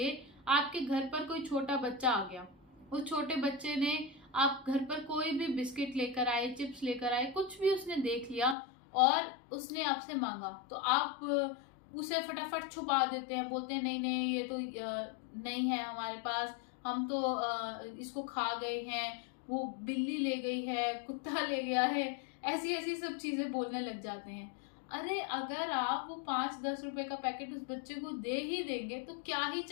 आपके घर पर कोई छोटा बच्चा आ गया, उस छोटे बच्चे ने, आप घर पर कोई भी बिस्किट लेकर आए, चिप्स लेकर आए, कुछ भी उसने देख लिया और उसने आपसे मांगा, तो आप उसे फटाफट छुपा देते हैं, बोलते हैं नहीं नहीं ये तो नहीं है हमारे पास, हम तो इसको खा गए हैं, वो बिल्ली ले गई है, कुत्ता ले गया है, ऐसी ऐसी सब चीजें बोलने लग जाते हैं। अरे अगर आप वो 5-10 रुपए का पैकेट उस बच्चे को दे ही देंगे तो क्या ही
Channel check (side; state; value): right; drops out; at 8.6 s